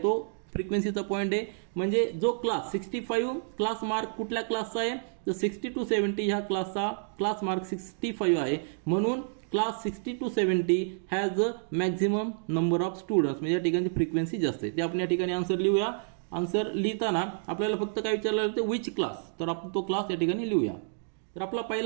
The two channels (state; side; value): silent; left; digital silence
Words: फ्रिक्वेन्सीचा पॉईंट आहे. म्हणजे जो क्लास 65 क्लास मार्क कुठल्या क्लासचा आहे, तर 60 to 70 ह्या क्लासचा क्लास मार्क 65 आहे. म्हणून class 60 to 70 has a maximum number of students. म्हणजे या ठिकाणी फ्रिक्वेन्सी जास्त आहे. ते आपण या ठिकाणी आन्सर लिहूया. आन्सर लिहिताना आपल्याला फक्त काय विचारलं होतं, विच क्लास. तर आपण तो क्लास या ठिकाणी लिहूया. तर आपला